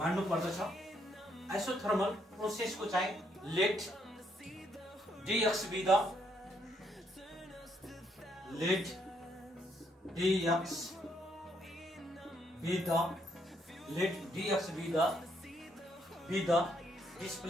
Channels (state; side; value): normal; both; correlation 0.73